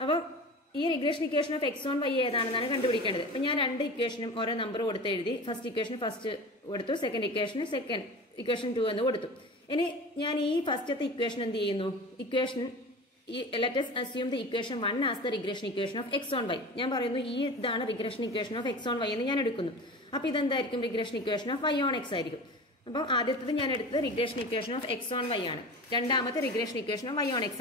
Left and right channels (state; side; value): normal; both; correlation 0.34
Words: അപ്പം ഈ റിഗ്രഷൻ ഇക്വേഷൻ ഓഫ് എക്സ് ഓൺ വൈ ഏതാണെന്നാണ് കണ്ടുപിടിക്കേണ്ടത്. അപ്പൊ ഞാൻ രണ്ട് ഇക്വേഷനും ഓരോ നമ്പർ കൊടുത്ത് എഴുതി. ഫസ്റ്റ് ഇക്വേഷൻ ഫസ്റ്റ് കൊടുത്തു, സെക്കൻഡ് ഇക്വേഷൻ സെക്കൻഡ് ഇക്വേഷൻ 2 എന്ന് കൊടുത്തു. ഇനി ഞാൻ ഈ ഫസ്റ്റത്തെ ഇക്വേഷൻ എന്ത് ചെയ്യുന്നു? ഇക്വേഷൻ ലെറ്റ് us assume the equation 1 as the regression equation of x on y. ഞാൻ പറയുന്നു ഈ ഇതാണ് റിഗ്രഷൻ ഇക്വേഷൻ ഓഫ് എക്സ് ഓൺ വൈ എന്ന് ഞാൻ എടുക്കുന്നു. അപ്പൊ ഇതെന്തായിരിക്കും? റിഗ്രഷൻ ഇക്വേഷൻ ഓഫ് വൈ ഓൺ എക്സ് ആയിരിക്കും. അപ്പം ആദ്യത്തേത് ഞാൻ എടുത്തത് റിഗ്രഷൻ ഇക്വേഷൻ ഓഫ് എക്സ് ഓൺ വൈ ആണ്, രണ്ടാമത്തെ റിഗ്രഷൻ ഇക്വേഷൻ ഓഫ് വൈ ഓൺ